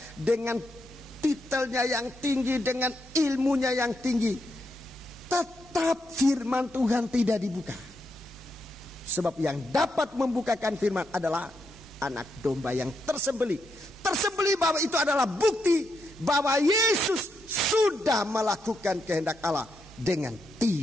dengan titelnya yang tinggi, dengan ilmunya yang tinggi, tetap firman Tuhan tidak dibuka. Sebab yang dapat membukakan firman adalah anak domba yang tersembelih. Tersembelih bahwa itu adalah bukti bahwa Yesus sudah melakukan kehendak Allah dengan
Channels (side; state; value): both; normal; correlation 0.81